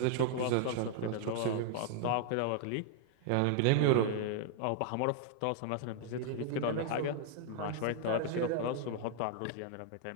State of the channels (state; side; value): different; both; correlation -0.01